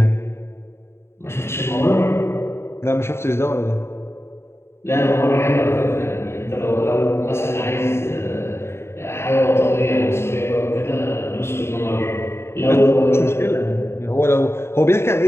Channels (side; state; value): right; late; 0.12 ms